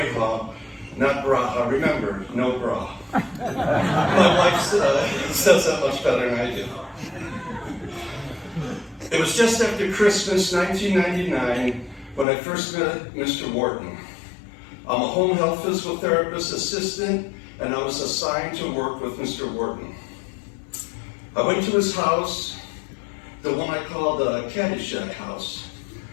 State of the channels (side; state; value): right; drops out; at 12.2 s